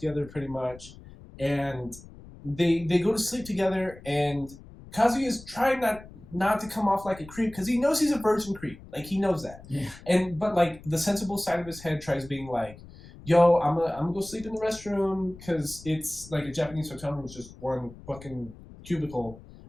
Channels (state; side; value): noise; left; rumble, 18 dB below the sound